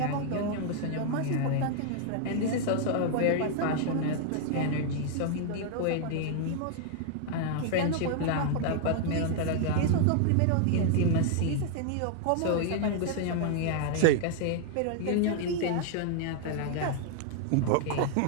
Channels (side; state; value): both; different; correlation 0.00